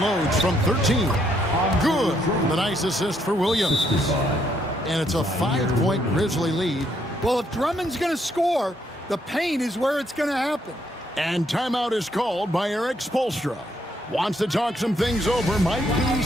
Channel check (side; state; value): both; normal; correlation 0.73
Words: from 13. Good. The nice assist for Williams. And it's a 5-point Grizzly lead. Well, if Drummond's going to score, the paint is where it's going to happen. And timeout is called by Eric Spoelstra. Wants to talk some things over. Might be